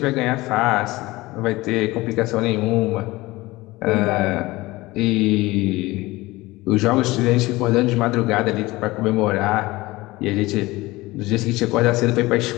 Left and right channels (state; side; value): quieter; right; 20.1 dB